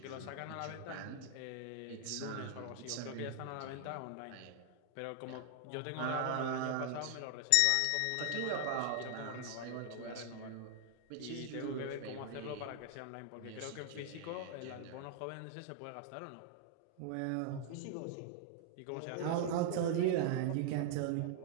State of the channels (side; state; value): both; different; correlation 0.00